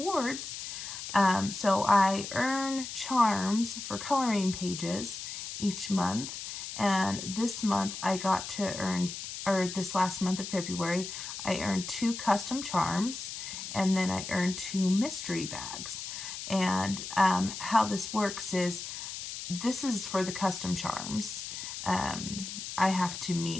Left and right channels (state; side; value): noise; left; hiss, 8 dB below the sound